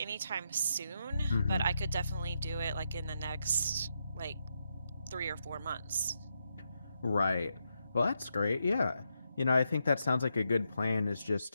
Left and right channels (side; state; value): both; inverted; correlation -0.83